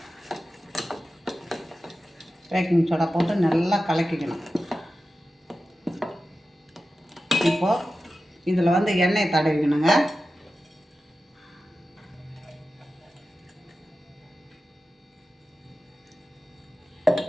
பேக்கிங் சோடா போட்டு நல்லா கலக்கிக்கணும். இப்போது இதில் எண்ணெய் தடவிக்கணுங்க.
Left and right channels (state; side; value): normal; both; correlation 0.93